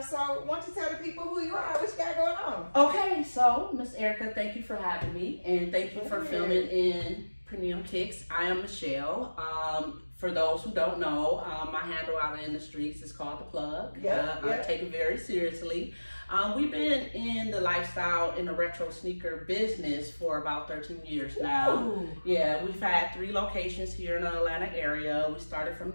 So why don't you tell the people who you are, what you got going on? Okay, so Miss Erica, thank you for having me, and thank you for filming in Premium Kicks. I am Michelle. For those who don't know, my handle out in the streets is called The Plug. I take it very seriously. We've been in the lifestyle in the retro sneaker business for about 13 years now. Ooh. Yeah, we've had 3 locations here in the Atlanta area. We started from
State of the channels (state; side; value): inverted; both; correlation -1.00